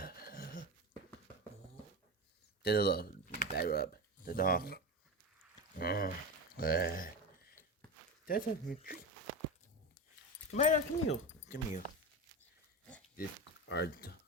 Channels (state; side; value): normal; both; correlation 0.22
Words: Tessa, look. Back rub. The dog. Tessa, retreat. Come here, come here. Come here. This are